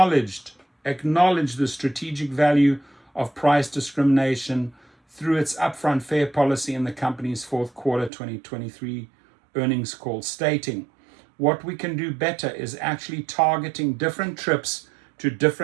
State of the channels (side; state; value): left; drops out; at 8.1 s